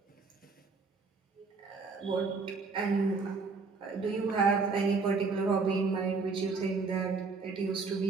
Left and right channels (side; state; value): left; quieter; 4.4 dB